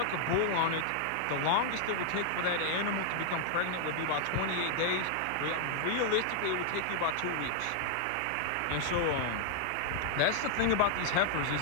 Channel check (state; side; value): different; both; correlation -0.01